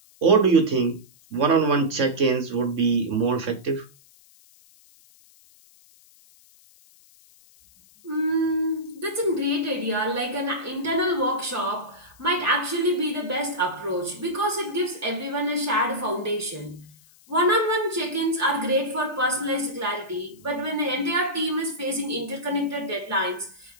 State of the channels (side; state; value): left; noise; hiss, 27 dB below the sound